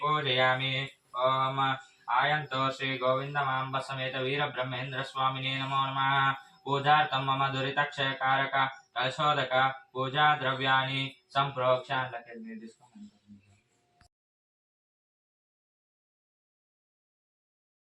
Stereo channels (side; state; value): both; identical; correlation 1.00